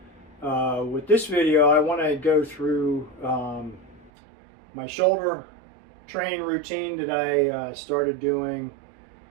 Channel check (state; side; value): drops out; left; at 4.1 s